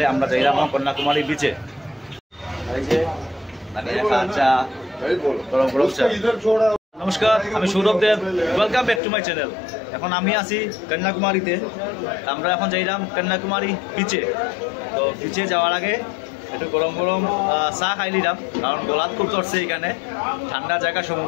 আমরা যাইলাম এখন কন্যাকুমারী বিচে। এই যে চা, গরম গরম চা। নমস্কার, আমি Sourav Dev. Welcome back to my channel. এখন আমি আছি কন্যাকুমারীতে। আমরা এখন যাইলাম কন্যাকুমারী বিচে। তো বিচে যাওয়ার আগে একটু গরম গরম চা খাই নিলাম, কারণ গলাত খুব ধরছে। এখানে ঠান্ডা জায়গা,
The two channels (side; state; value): right; drops out; at 9.0 s